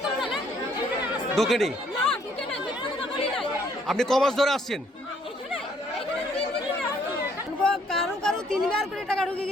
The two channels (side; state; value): both; normal; correlation 0.66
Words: ঢোকেনি? আপনি কমাস ধরে আসছেন? কারো 3বার করে টাকা ঢুকে